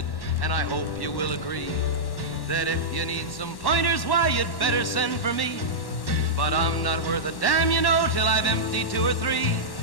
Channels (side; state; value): right; late; 1.1 ms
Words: and I hope you will agree that if you need some pointers, why, you'd better send for me. But I'm not worth a damn, you know, till I've emptied 2 or 3